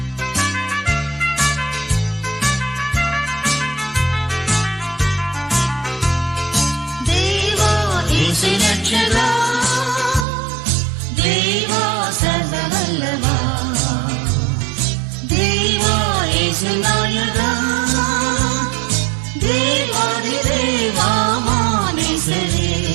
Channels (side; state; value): left; drops out; at 10.2 s